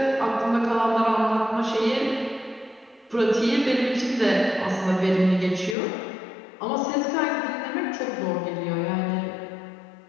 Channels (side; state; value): right; drops out; at 5.8 s